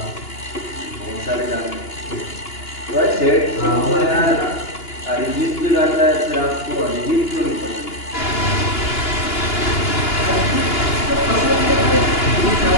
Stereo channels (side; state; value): right; late; 2.9 ms